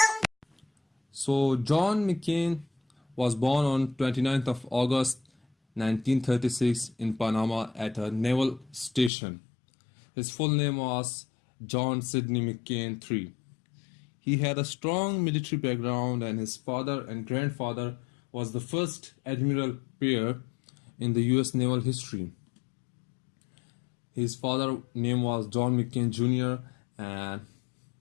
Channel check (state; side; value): drops out; right; at 9.1 s